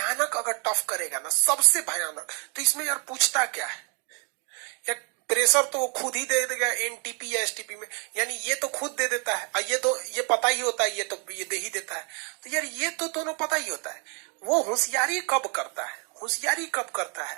अगर टफ करेगा ना, सबसे भयानक, तो इसमें यार पूछता क्या है, या प्रेशर तो वो खुद ही दे देगा एनटीपी या एसटीपी में, यानी ये तो खुद दे देता है, और ये तो ये पता ही होता है, ये तो ये दे ही देता है। तो यार ये तो दोनों पता ही होता है। वो होशियारी कब करता है, होशियारी कब करता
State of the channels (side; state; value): left; quieter; 37.2 dB